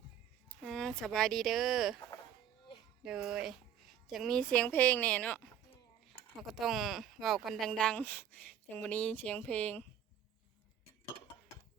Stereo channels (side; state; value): left; quieter; 9.6 dB